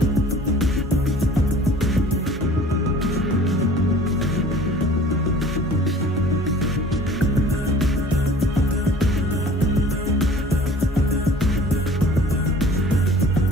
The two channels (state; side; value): normal; both; correlation 0.47